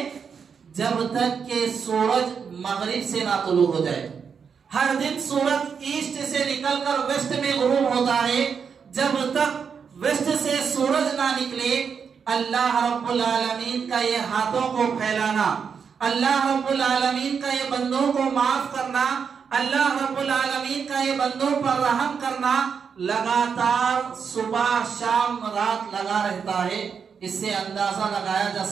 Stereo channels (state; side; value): quieter; left; 6.4 dB